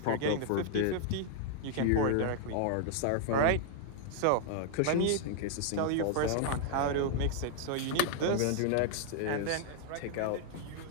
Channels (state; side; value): different; both; correlation 0.00